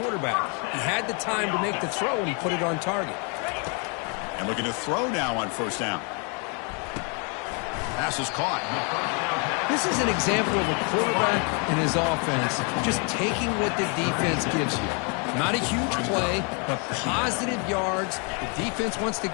quarterback. He had the time to make the throw, and he put it on target. And looking to throw now on first down. Pass is caught. This is an example of a quarterback and his offense just taking what the defense gives you. Not a huge play, but positive yards. The defense wants to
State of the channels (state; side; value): quieter; right; 36.1 dB